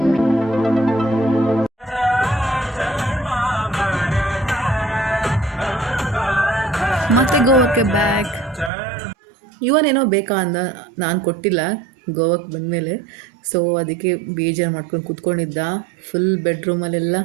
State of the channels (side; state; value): left; drops out; at 8.7 s